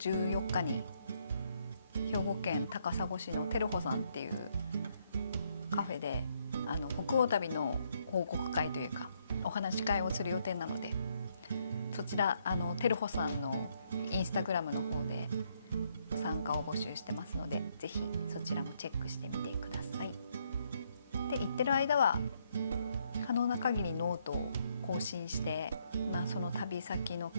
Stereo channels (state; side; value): inverted; both; correlation -0.73